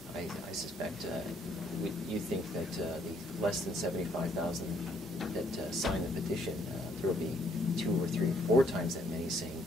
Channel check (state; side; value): normal; both; correlation 0.67